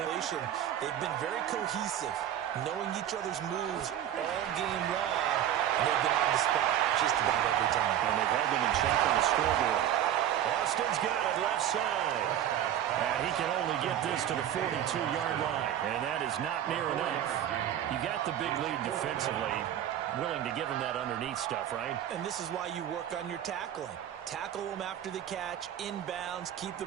They've been very cohesive, knowing each other's moves all game long, and they've been on the spot just about every time. And they've held them in check on the scoreboard. Austin's got it left side. And he can only get this to the 42-yard line. And that is not near enough. You got the big lead defensively. Willing to give him that underneath stuff, right? And this is why you work on your tackling. Tackle them after the catch, inbounds, keep the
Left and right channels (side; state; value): left; quieter; 10.9 dB